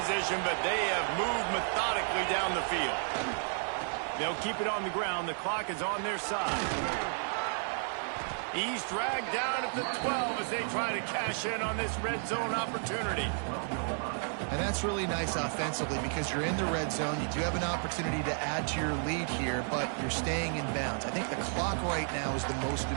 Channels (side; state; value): left; silent; 56 dB below the other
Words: but they have moved methodically down the field. They'll keep it on the ground. The clock is on their side. He's dragged down at the 12 as they try to cash in on this red zone opportunity. And that's really nice offensively because you're in the red zone. You do have an opportunity to add to your lead here, but you're staying in bounds. I think the clock right now is the most